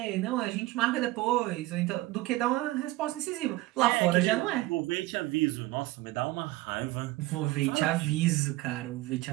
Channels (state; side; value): quieter; left; 18.3 dB